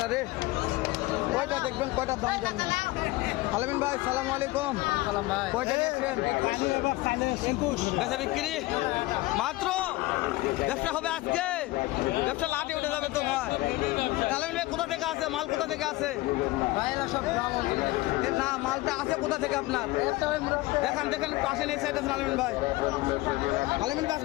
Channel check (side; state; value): right; quieter; 19.7 dB